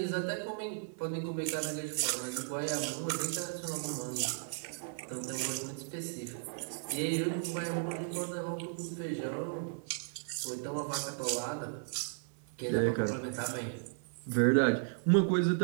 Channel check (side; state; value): left; silent; 54 dB below the other